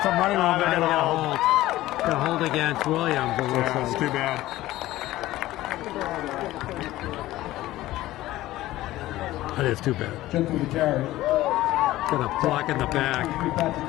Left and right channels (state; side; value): quieter; right; 16.1 dB